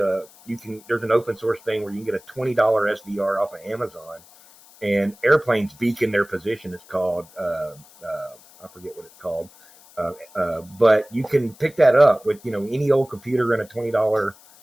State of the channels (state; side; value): noise; left; hiss, 25 dB below the sound